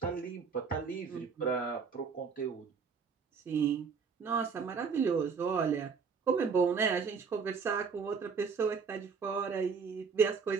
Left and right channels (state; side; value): quieter; left; 5.6 dB